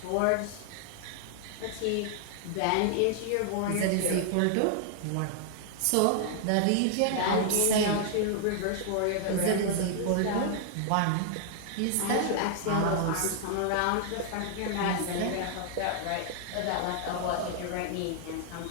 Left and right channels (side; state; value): both; different; correlation -0.01